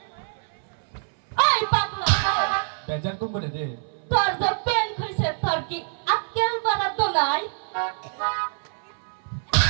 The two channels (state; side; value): silent; left; 61 dB below the other